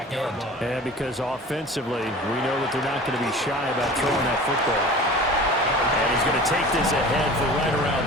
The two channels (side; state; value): both; normal; correlation 0.40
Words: end. And because offensively, we know that they're not going to be shy about throwing that football. And he's going to take this ahead for right around